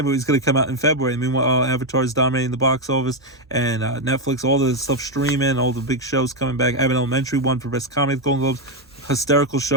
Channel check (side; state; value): both; normal; correlation 0.05